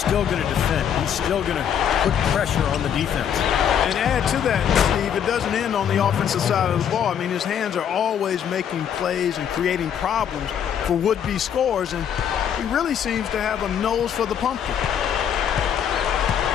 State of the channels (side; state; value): right; quieter; 8.7 dB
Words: going to defend. He's still going to put pressure on the defense. And add to that, Steve, it doesn't end on the offensive side of the ball. I mean, his hands are always making plays and creating problems for would-be scorers, and he really seems to have a nose for the pumpkin.